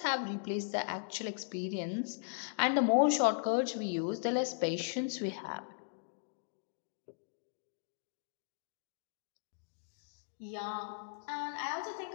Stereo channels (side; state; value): right; silent; digital silence